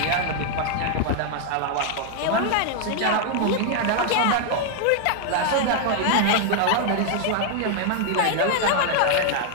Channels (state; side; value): different; both; correlation 0.00